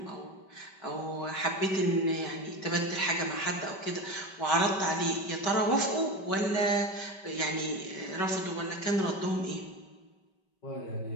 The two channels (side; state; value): right; late; 5.1 ms